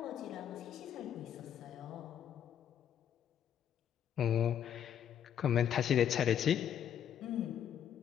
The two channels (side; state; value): right; quieter; 9.5 dB